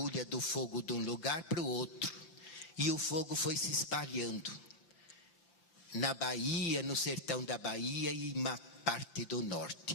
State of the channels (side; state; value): right; late; 6.1 ms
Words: do fogo de um lugar para o outro. E o fogo foi se espalhando na Bahia, no sertão da Bahia e uma parte do norte.